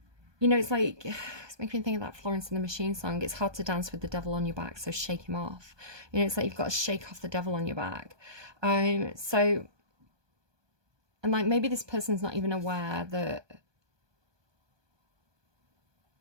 know, it's like, it's making me think of that Florence and the Machine song. It's hard to dance with the devil on your back, so shake him off. You know, it's like you've got to shake off the devil on your back. So, and like maybe this person's not even aware that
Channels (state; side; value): late; left; 1.2 ms